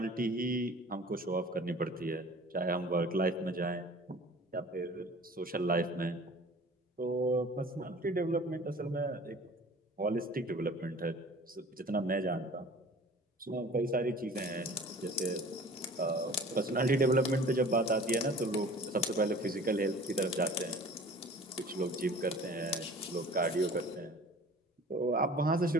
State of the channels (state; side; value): normal; both; correlation 0.45